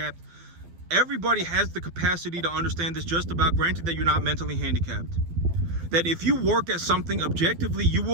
everybody has the capacity to understand this just about, granted that you're not mentally handicapped. That if you work at something objectively, you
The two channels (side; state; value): left; late; 12 ms